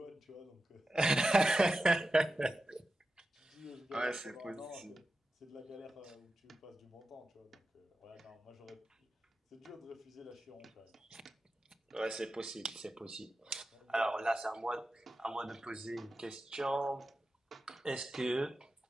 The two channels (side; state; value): both; normal; correlation 0.92